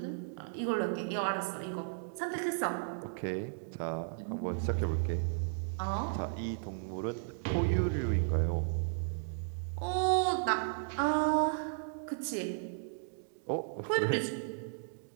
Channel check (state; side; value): silent; left; digital silence